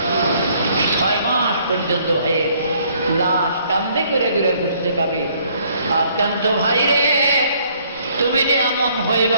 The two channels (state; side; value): inverted; both; correlation -0.64